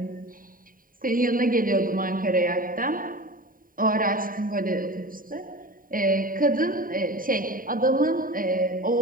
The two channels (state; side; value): late; left; 0.41 ms